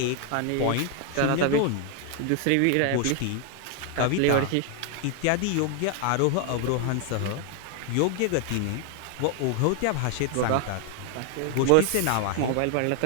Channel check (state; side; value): different; both; correlation 0.00